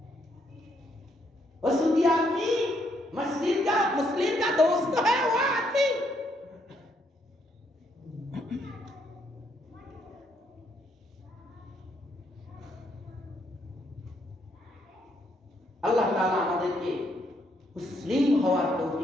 वसुदी आदमी, मुस्लिम का दोस्त है वो आदमी। আল্লাহ তাআলা আমাদেরকে মুসলিম হওয়ার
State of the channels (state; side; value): normal; both; correlation 0.73